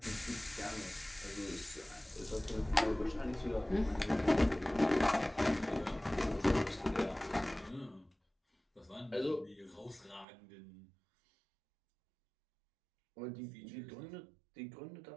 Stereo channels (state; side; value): drops out; left; at 10.2 s